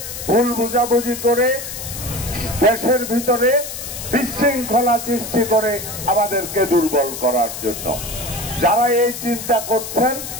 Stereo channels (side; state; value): left; noise; hiss, 8 dB below the sound